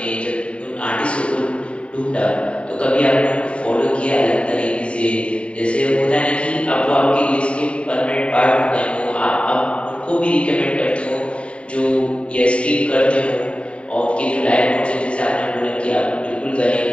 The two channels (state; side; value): late; right; 0.060 ms